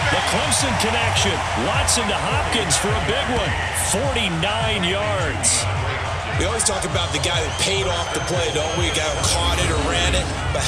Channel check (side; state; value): both; identical; correlation 1.00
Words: The Clemson connection. Watson to Hopkins for a big one. 49 yards. We always talk about the guy that paid off the play, don't we? The guy who caught it or ran it. But